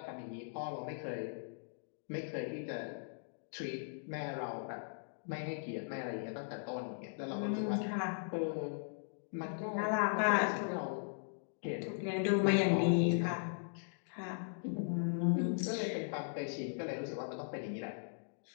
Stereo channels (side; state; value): right; silent; digital silence